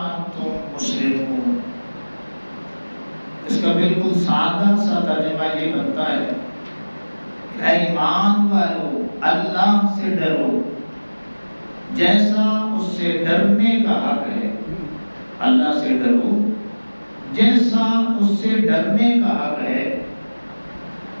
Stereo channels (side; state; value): both; inverted; correlation -1.00